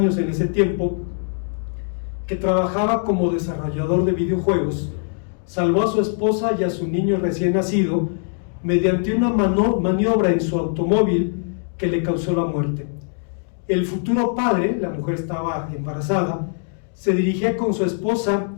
en ese tiempo, que trabajaba como desarrollador de videojuegos, salvó a su esposa y a su niño recién nacido mediante una maniobra en su automóvil que le causó la muerte. El futuro padre, la mujer estaba embarazada, se dirigía con su esposa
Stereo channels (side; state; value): right; silent; 60 dB below the other